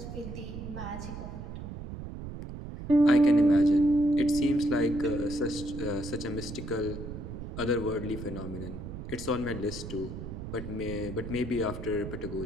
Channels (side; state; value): right; noise; rumble, 9 dB below the sound